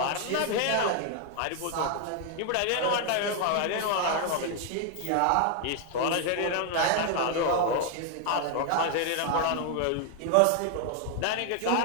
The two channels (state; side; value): different; both; correlation 0.00